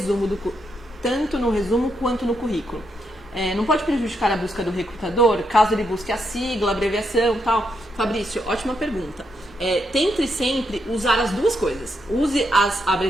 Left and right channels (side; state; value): both; normal; correlation 0.80